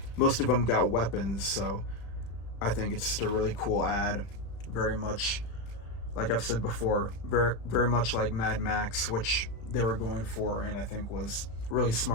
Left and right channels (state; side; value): late; right; 35 ms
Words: most of them got weapons, so I think it's just a really cool ad. Very much, like I've said before, very much like Mad Max, which they were going for, and I think was really